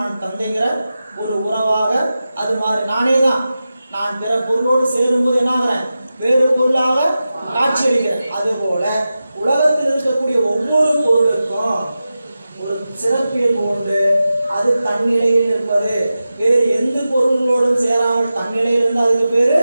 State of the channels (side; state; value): both; inverted; correlation -0.93